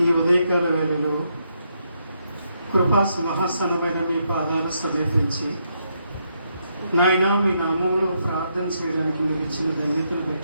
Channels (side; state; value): both; inverted; correlation -0.78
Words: ఈ ఉదయకాల వేళలో కృపా సింహాసనమైన మీ పాదాలు సమీపించి నాయన మీ నామంలో ప్రార్థన చేయడానికి మీరు ఇచ్చిన ధన్యతను